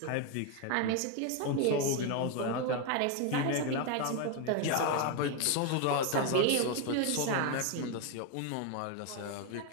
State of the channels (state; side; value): different; both; correlation 0.01